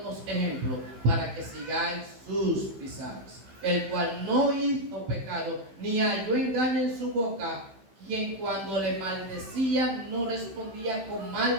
ejemplo para que sigáis sus pisadas, el cual no hizo pecado, ni halló engaño en su boca, quien cuando le maldecían no respondía con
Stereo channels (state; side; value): late; left; 15 ms